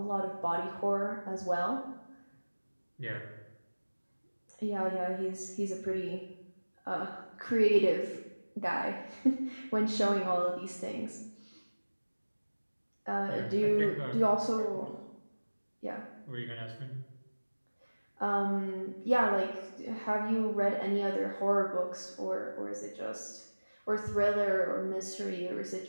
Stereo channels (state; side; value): inverted; both; correlation -1.00